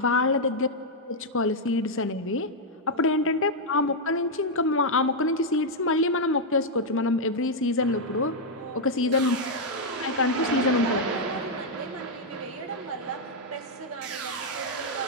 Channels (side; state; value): both; normal; correlation -0.03